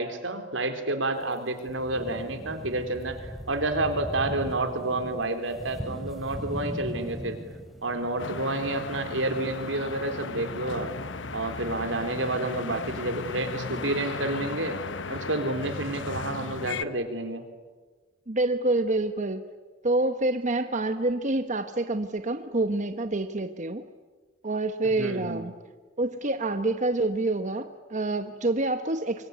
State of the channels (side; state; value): both; normal; correlation 0.09